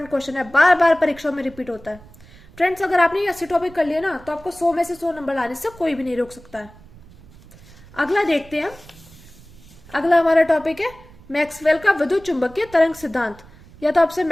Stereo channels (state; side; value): noise; right; rumble, 22 dB below the sound